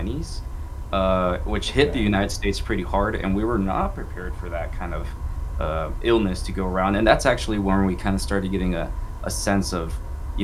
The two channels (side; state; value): both; identical; correlation 1.00